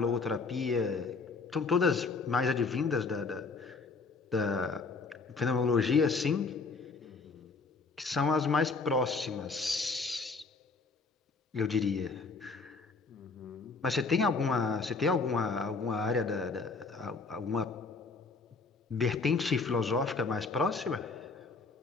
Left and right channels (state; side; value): quieter; right; 4.2 dB